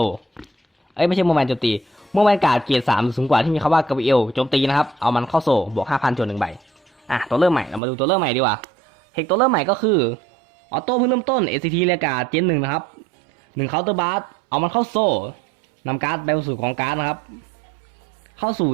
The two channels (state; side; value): drops out; left; at 7.8 s